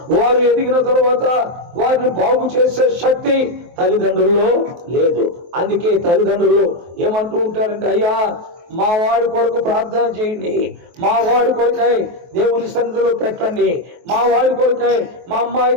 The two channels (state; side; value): late; left; 23 ms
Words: వారు ఎదిగిన తరువాత వారిని బాగు చేసే శక్తి తల్లిదండ్రుల్లో లేదు. అందుకే తల్లిదండ్రులు ఏమంటూ ఉంటారంటే, అయ్యా మా వాడి కొరకు ప్రార్థన చేయండి, మా వాడి కొరకై దేవుని సన్నిధిలో పెట్టండి, మా వాడి కొరకై మా అమ్మాయి